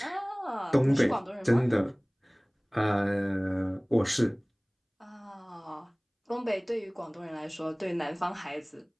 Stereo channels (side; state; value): both; identical; correlation 1.00